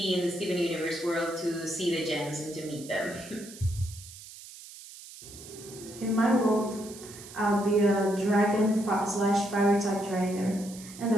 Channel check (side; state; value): right; noise; hiss, 16 dB below the sound